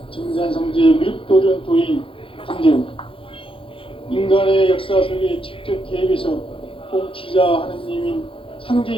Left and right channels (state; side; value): late; right; 0.26 ms